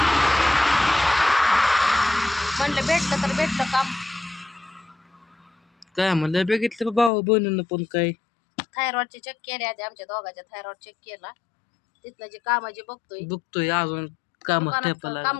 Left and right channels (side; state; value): right; drops out; at 7.1 s